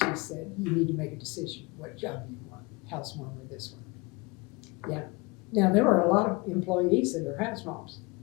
said, you need to make a decision what job you want, house mom or this one." Yeah. Now, there were a lot of employees that are house moms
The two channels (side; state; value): right; quieter; 26.2 dB